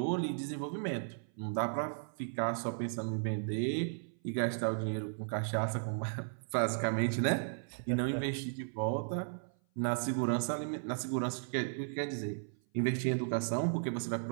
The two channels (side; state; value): left; silent; 54 dB below the other